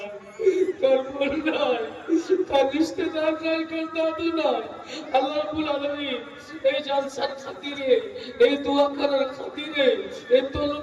কর্ম নাই, তার রিশতেদার নাই, কার দাদু নাই। আল্লাহ রাব্বুল আলামিন এই জালসার খাতিরে, এই দোয়া করার খাতিরে, এই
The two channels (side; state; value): both; identical; correlation 1.00